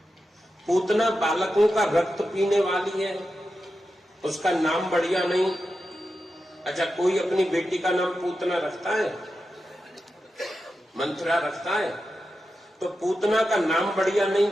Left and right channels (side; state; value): both; normal; correlation 0.90